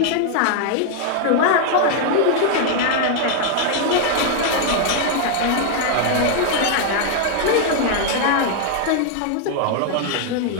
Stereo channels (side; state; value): both; different; correlation 0.00